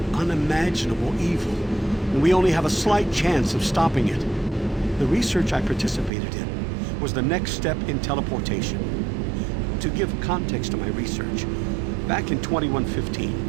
unimaginable evil, and we only have a slight chance of stopping it. The research I participated in was the next step in teleportation. To give context to my research, back in 2115,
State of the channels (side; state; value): left; drops out; at 6.1 s